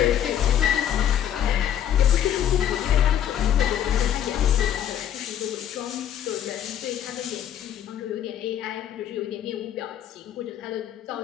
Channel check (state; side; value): quieter; right; 10.2 dB